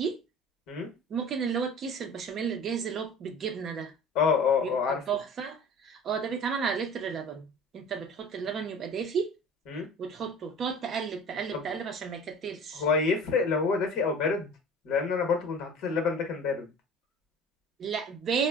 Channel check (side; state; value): both; normal; correlation 0.41